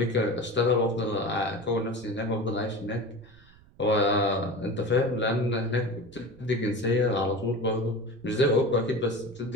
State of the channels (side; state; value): right; noise; rumble, 25 dB below the sound